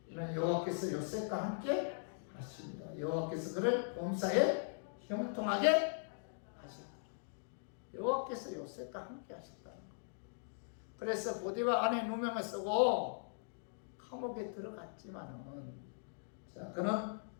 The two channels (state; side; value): silent; right; digital silence